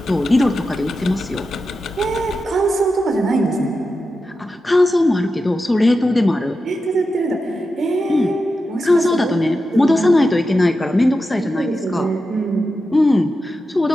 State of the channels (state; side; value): normal; both; correlation 0.90